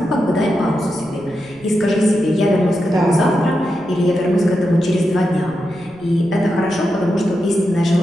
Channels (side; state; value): right; noise; rumble, 25 dB below the sound